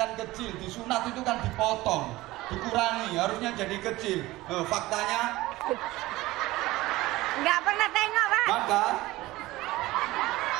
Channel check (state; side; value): quieter; left; 18.5 dB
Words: kecil, disunat itu kan dipotong, dikurangi, harusnya jadi kecil. Faktanya nggak pernah tengok, Pak. Maka